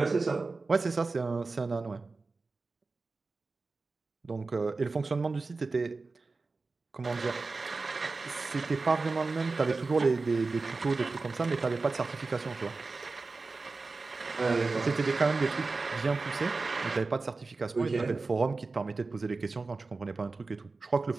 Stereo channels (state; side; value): quieter; left; 3.8 dB